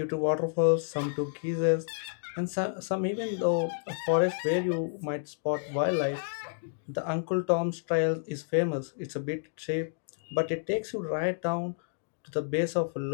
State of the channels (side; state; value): right; silent; digital silence